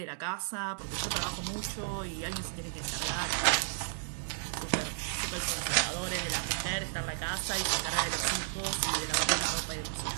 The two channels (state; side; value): silent; left; digital silence